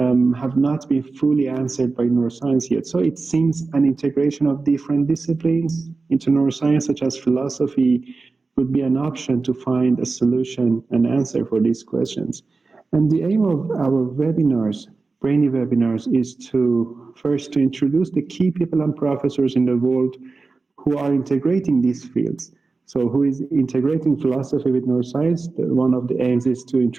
not been fully answered by neuroscience yet. So it seems an integration of different disciplines into neuroscience, such as philosophy, would be an option to find a solution and answer for these questions. And the aim of our webinars, BrainEE webinars, is to first to introduce the key people and professors in the world who are integrating these fields. So who is integrating philosophy with neuroscience? One of the aims is to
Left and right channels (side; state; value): left; quieter; 4.0 dB